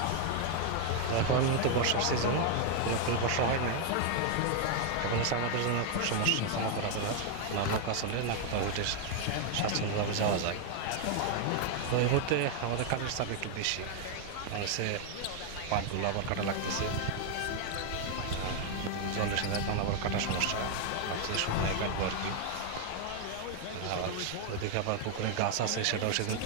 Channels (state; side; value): different; both; correlation 0.01